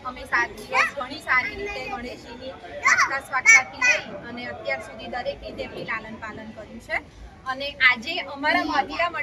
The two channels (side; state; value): both; identical; correlation 1.00